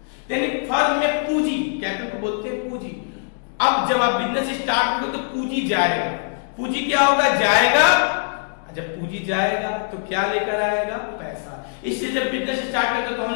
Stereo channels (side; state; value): right; silent; digital silence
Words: यानी फर्म में पूंजी, कैपिटल को बोलते हैं पूंजी। अब जब आप बिजनेस स्टार्ट करोगे तो पूंजी जाएगा, पूंजी क्या होगा, जाएगा। जब पूंजी जाएगा तो क्या लेकर आएगा, पैसा। इससे जब बिजनेस स्टार्ट करते तो हम